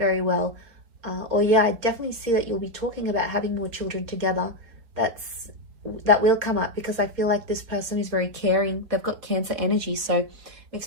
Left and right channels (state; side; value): late; left; 4.1 ms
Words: well. Or yeah, I definitely see that you'll be talking about having more children together. That will come up because I feel like this person is very caring. They've got Cancer energy, so it